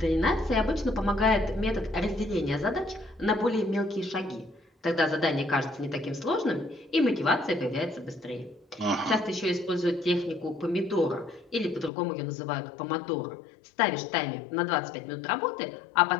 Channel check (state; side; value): drops out; right; at 11.9 s